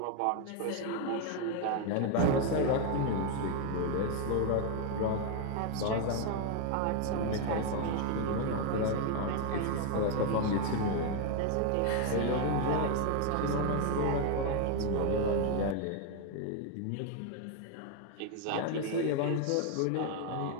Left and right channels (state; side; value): different; both; correlation 0.01